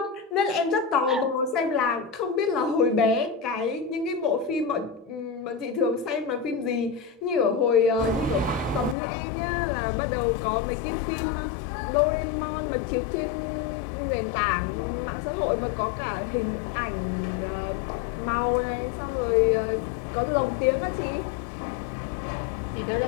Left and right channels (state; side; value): drops out; right; at 9.0 s